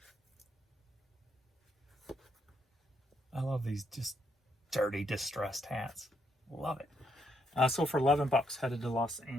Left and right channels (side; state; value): both; normal; correlation 0.75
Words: I love these just dirty, distressed hats. Love it. So for $11, headed to Los